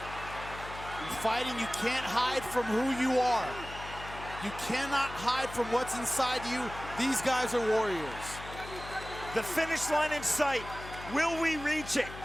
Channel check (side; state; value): left; noise; hum, 13 dB below the sound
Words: In fighting, you can't hide from who you are. You cannot hide from what's inside you. These guys are warriors. The finish line in sight. Will we reach it?